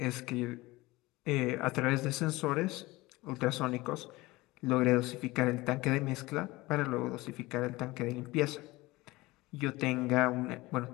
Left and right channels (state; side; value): quieter; right; 20.6 dB